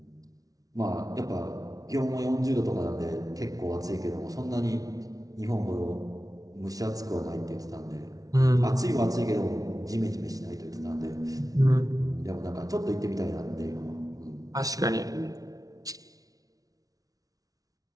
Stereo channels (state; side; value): late; left; 0.18 ms